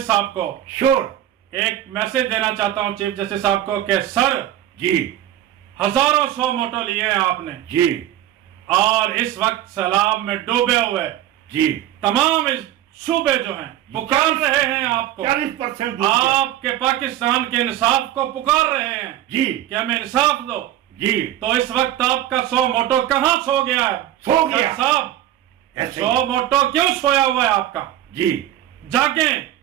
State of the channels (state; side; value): quieter; left; 12.5 dB